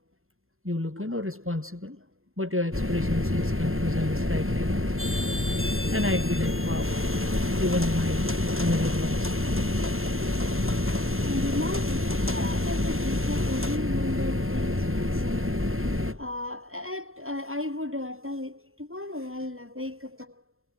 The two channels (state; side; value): late; left; 0.61 ms